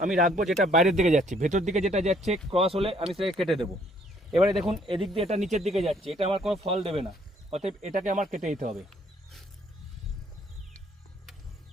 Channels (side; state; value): both; normal; correlation 0.64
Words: আমি রাখবো যেটা বাইরের দিকে যাচ্ছে, ভেতর দিকে যেটা যাচ্ছে ক্রস হলে আমি সেটাকে কেটে দেবো। এবারে দেখুন, এদিক দিয়ে এটা নিচের দিকে যাচ্ছে, এটা আমার কোনো ফল দেবে না, অতএব এটাকে আমার কেটে দিতে হবে।